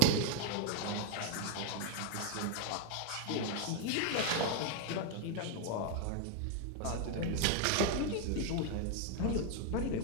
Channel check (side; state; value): both; different; correlation 0.00